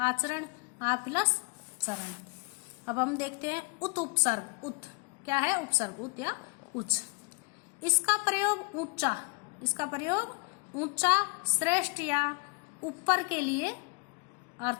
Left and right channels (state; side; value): quieter; right; 31.7 dB